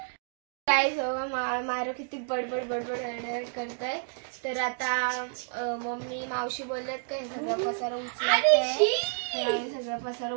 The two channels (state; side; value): silent; left; digital silence